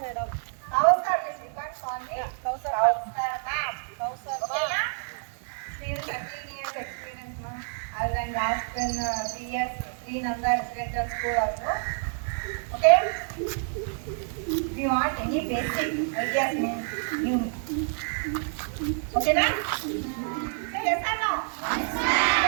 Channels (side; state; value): left; silent; digital silence